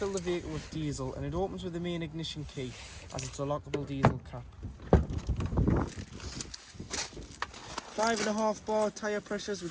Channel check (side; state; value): both; identical; correlation 1.00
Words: the vehicle with diesel, and it opens with the main ignition key, as it's a lockable diesel cap. 5.5 bar tyre pressures,